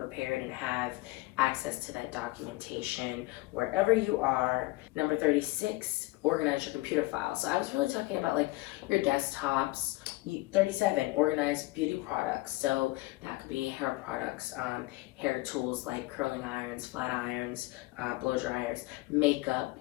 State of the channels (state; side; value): quieter; right; 20.8 dB